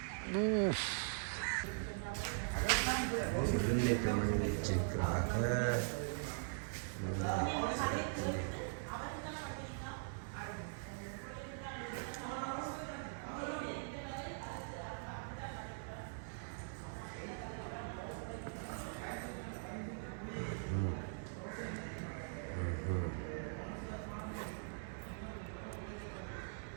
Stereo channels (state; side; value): silent; left; digital silence